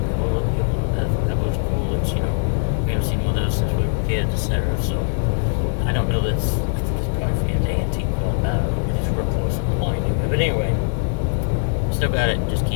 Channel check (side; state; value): right; silent; 65 dB below the other